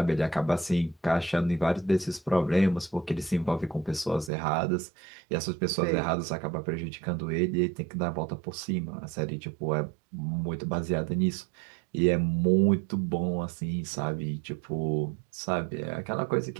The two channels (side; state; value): left; drops out; at 4.3 s